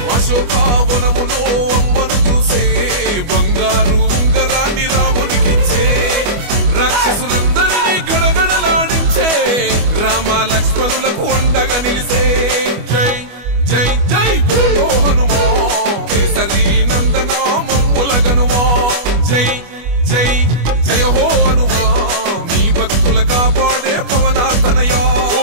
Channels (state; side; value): late; left; 25 ms